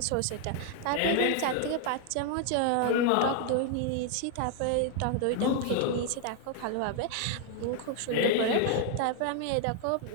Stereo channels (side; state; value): both; different; correlation 0.00